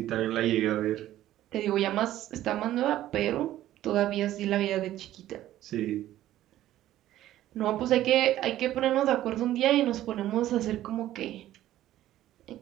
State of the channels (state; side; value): quieter; left; 13.6 dB